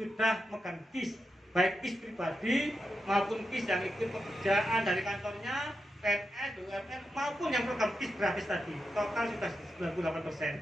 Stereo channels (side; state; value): both; normal; correlation 0.88